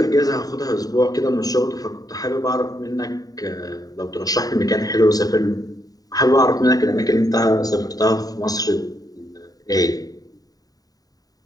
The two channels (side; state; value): right; late; 0.18 ms